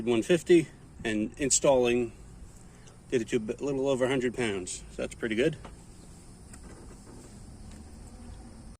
150, and installing did it to a little over 100 pounds. So that's pretty good.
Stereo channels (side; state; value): both; identical; correlation 1.00